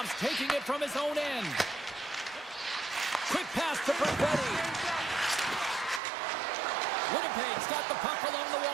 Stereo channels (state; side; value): drops out; left; at 6.0 s